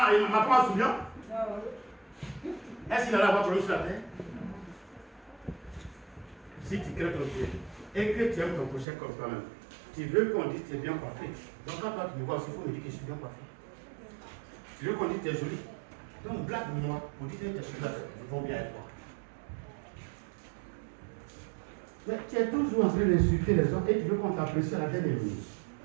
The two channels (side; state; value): left; drops out; at 8.8 s